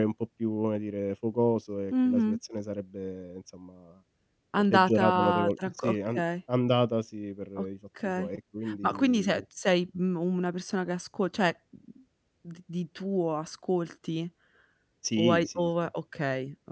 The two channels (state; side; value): identical; both; correlation 1.00